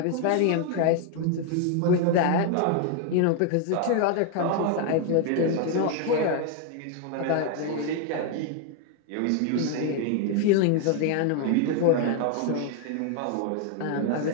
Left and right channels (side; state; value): both; different; correlation 0.00